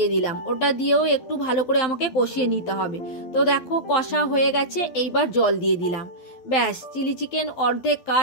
দিলাম। ওটা দিয়েও একটু ভালো করে আমাকে কষিয়ে নিতে হবে। তো দেখো কষা হয়ে গেছে, এইবার জল দিয়ে দিলাম। ব্যাস, চিলি চিকেন অর্ধেক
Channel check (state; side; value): late; right; 12 ms